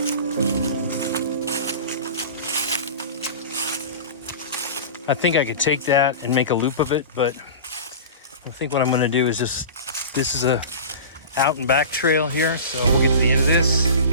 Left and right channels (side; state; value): both; inverted; correlation -0.34